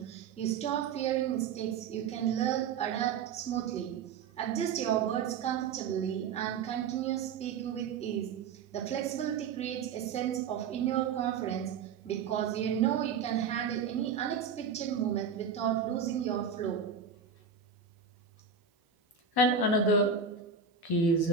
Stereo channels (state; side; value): quieter; left; 6.1 dB